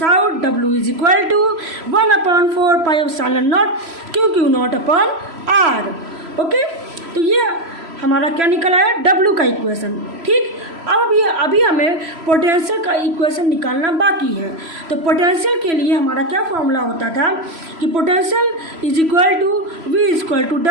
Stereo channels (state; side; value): late; left; 3.0 ms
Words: out w is equal to 1/4πε0 q naught upon r। Okay, तो ये हमारा क्या निकला है? W का इक्वेशन। ठीक, अब अभी हमें पोटेंशियल का इक्वेशन निकालना बाकी है। तो पोटेंशियल के लिए हमारा क्या फॉर्मूला होता था कि potential is equal to V equal to